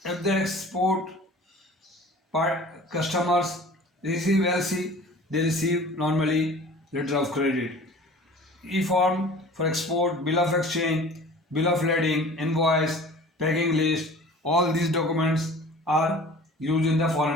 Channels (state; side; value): normal; both; correlation 0.44